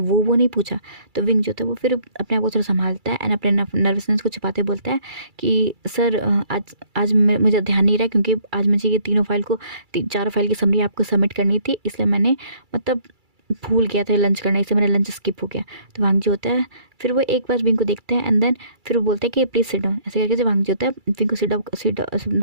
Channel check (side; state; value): left; late; 2.3 ms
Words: नहीं पूछा। तो विंग जो होता है वो फिर अपने आप को थोड़ा संभालता है एंड अपने नर्वसनेस को छुपाते बोलता है कि सर आज मुझे ध्यान नहीं रहा, क्योंकि आज मुझे ये चारों फाइल की समरी आपको सबमिट करनी थी, इसलिए मैंने मतलब भूल गया था लंच करना, इससे मेरा लंच स्किप हो गया। तो वांग जी होता है, फिर वो एक बार विंग को देखता है एंड देन फिर वो बोलता है कि प्लीज़ सिट डाउन, ऐसे करके जो वांग जी होता है विंग को सिट